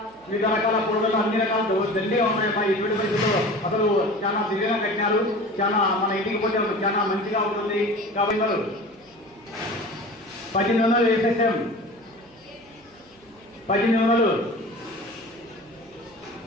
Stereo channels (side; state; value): right; noise; hum, 30 dB below the sound